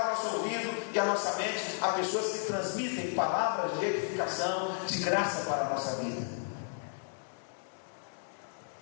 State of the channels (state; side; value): silent; right; 56 dB below the other